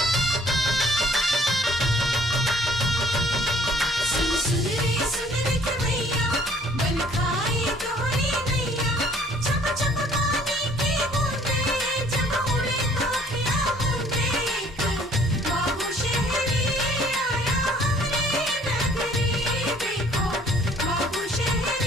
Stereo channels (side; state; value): both; normal; correlation 0.58